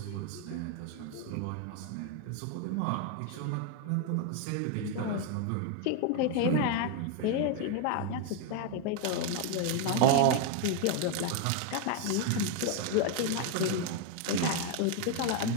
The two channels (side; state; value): both; different; correlation 0.01